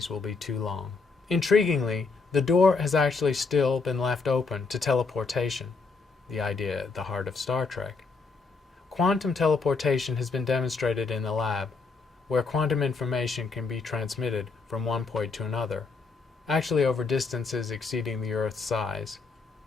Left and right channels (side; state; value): right; quieter; 4.3 dB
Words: will be too long. Intriguingly, the door has actually still been left open to teleportation, the idea at the heart of Star Trek. Quantum teleportation has been demonstrated in the lab, where quantum information can be transmitted from one point to another, actually over distances exceeding the Earth's size.